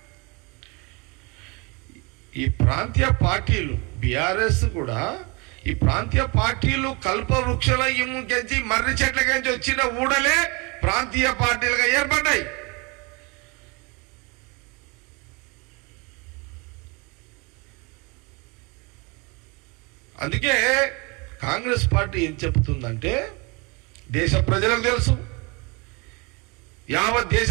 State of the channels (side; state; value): left; quieter; 28.8 dB